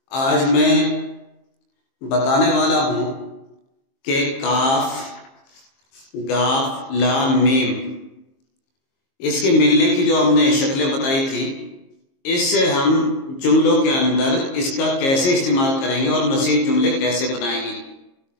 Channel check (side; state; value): right; late; 22 ms